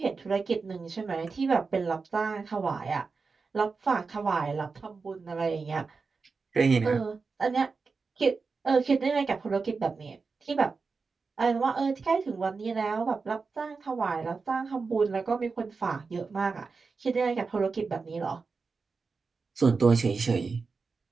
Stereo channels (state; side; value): quieter; left; 4.6 dB